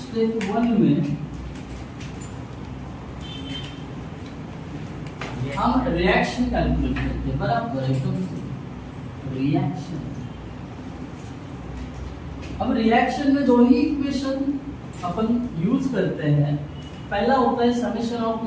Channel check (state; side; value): identical; both; correlation 1.00